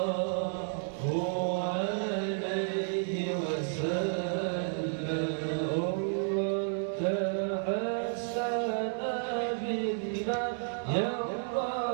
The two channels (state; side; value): silent; left; digital silence